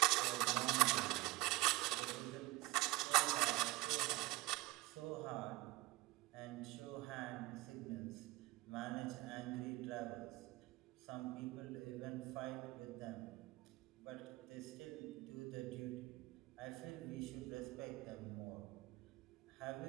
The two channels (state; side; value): quieter; left; 20.3 dB